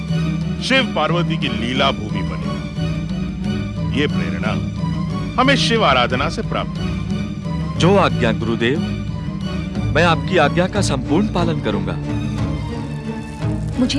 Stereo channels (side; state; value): both; identical; correlation 1.00